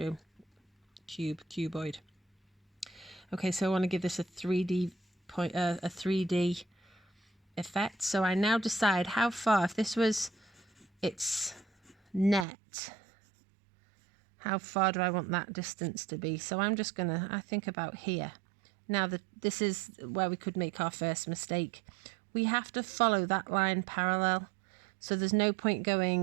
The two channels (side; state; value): left; drops out; at 12.5 s